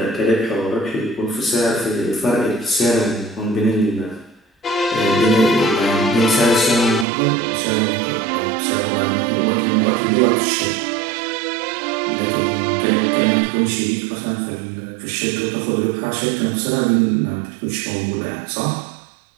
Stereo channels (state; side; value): drops out; left; at 7.1 s